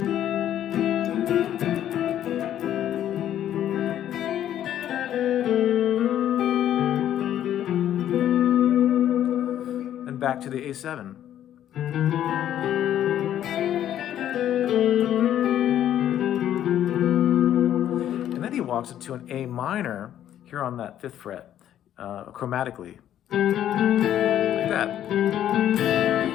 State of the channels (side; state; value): right; quieter; 11.1 dB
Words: Back to the A7. And then he walks into an A minor here on that 5th fret, chromatically. Like that.